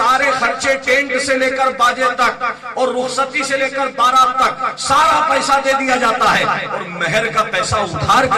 خرچے ٹینٹ سے لے کر باجے تک اور رخصتی سے لے کر بارات تک سارا پیسہ دے دیا جاتا ہے اور مہر کا پیسہ ادھار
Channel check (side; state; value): both; identical; correlation 1.00